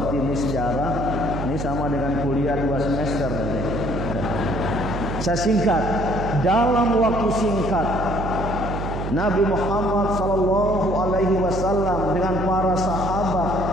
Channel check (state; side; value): noise; right; hum, 4 dB below the sound